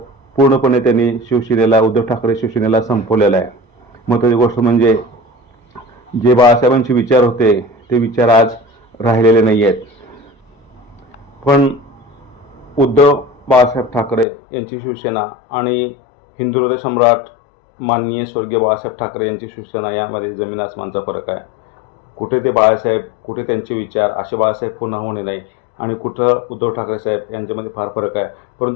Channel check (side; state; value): right; drops out; at 14.2 s